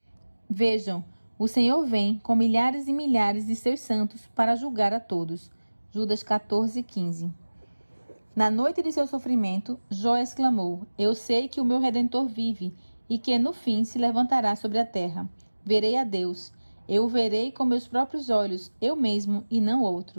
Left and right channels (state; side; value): inverted; both; correlation -1.00